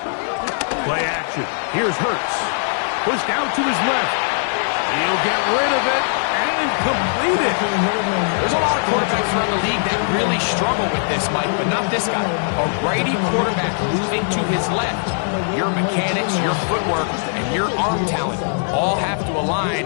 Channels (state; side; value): silent; right; digital silence